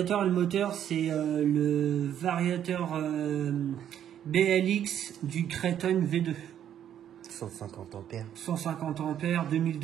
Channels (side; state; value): left; quieter; 10.1 dB